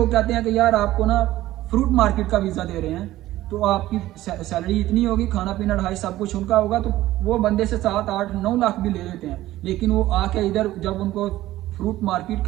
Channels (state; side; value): quieter; left; 15.4 dB